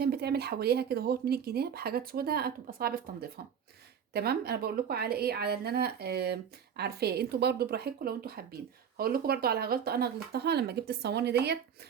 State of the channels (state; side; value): quieter; left; 7.9 dB